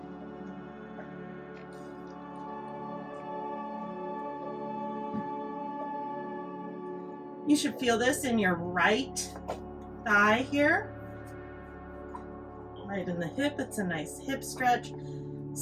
You should feel this in your right thigh here. Right in the hip, it's a nice hip stretch.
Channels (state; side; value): identical; both; correlation 1.00